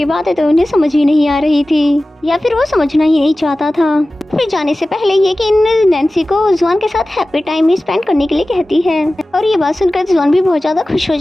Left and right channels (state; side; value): normal; both; correlation 0.96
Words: बातें तो उन्हें समझ ही नहीं आ रही थी या फिर वो समझना ही नहीं चाहता था। फिर जाने से पहले येकिन नैन्सी को जुआन के साथ हैप्पी टाइम स्पेंड करने के लिए कहती है और ये बात सुनकर जुआन भी बहुत ज्यादा खुश हो